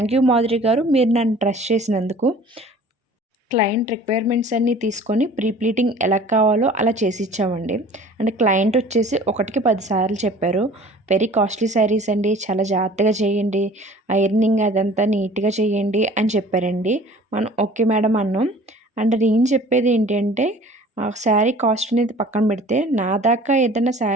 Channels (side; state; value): both; normal; correlation 0.47